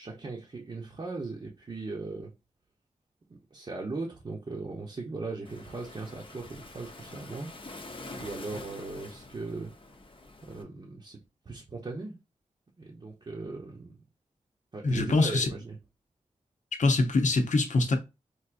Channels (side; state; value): both; normal; correlation 0.76